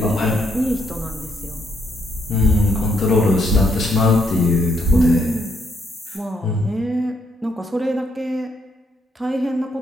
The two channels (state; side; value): normal; both; correlation 0.74